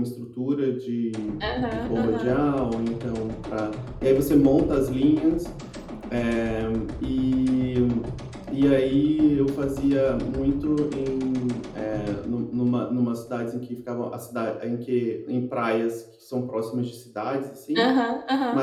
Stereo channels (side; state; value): both; identical; correlation 1.00